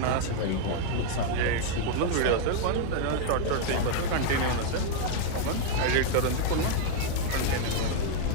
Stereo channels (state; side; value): different; both; correlation 0.00